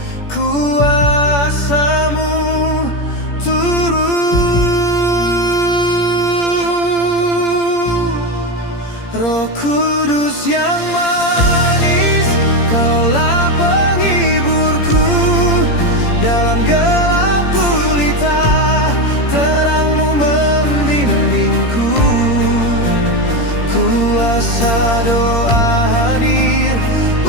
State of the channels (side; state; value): right; late; 17 ms